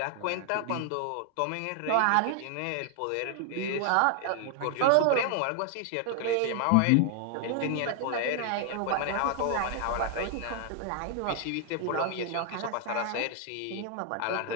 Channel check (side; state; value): both; different; correlation 0.00